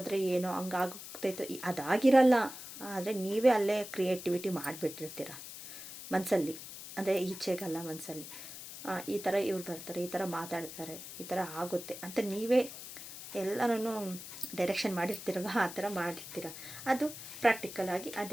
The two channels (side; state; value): left; noise; hiss, 12 dB below the sound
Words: ಏನೋ ಹಂಗಾಗ್ತೈತೋ, ಅದಾಗಿರಲ್ಲ. ಆದರೆ ನೀವೇ ಅಲ್ಲೇ ಕ್ರಿಯೇಟಿವಿಟಿ ಮಾಡಿಬಿಟ್ಟಿರ್ತೀರ ಮನಸ್ಸಲ್ಲಿ, ಅಂದರೆ ಈಚೆಗಲ್ಲ ಮನಸ್ಸಲ್ಲಿ. ಈ ಥರ ಇವ್ರು ಬರ್ತಾರೆ, ಈ ಥರ ಮಾತಾಡ್ತಾರೆ, ಈ ಥರ ಆಗುತ್ತೆ ಅಂತ ನೀವೇ ಎಲ್ಲನೂ ಡೈರೆಕ್ಷನ್ ಮಾಡಿರ್ತೀರಲ್ವ, ಆ ಥರ ಮಾಡಿರ್ತೀರ. ಅದು ಪ್ರಾಕ್ಟಿಕಲಾಗಿ